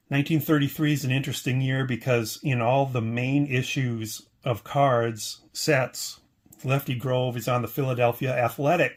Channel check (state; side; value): identical; both; correlation 1.00